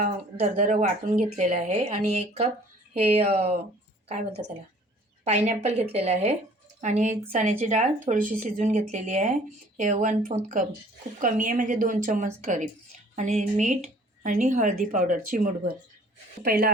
दरदरं वाटून घेतलेलं आहे. आणि 1 कप हे काय बोलतात त्याला, पायनॅपल घेतलेलं आहे. आणि चण्याची डाळ थोडीशी शिजवून घेतलेली आहे. हे 1/4 कप, खूप कमी आहे म्हणजे 2 चम्मच करीब. आणि मीठ आणि हळदी पावडर चिमूटभर. पहिलं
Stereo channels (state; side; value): normal; both; correlation 0.54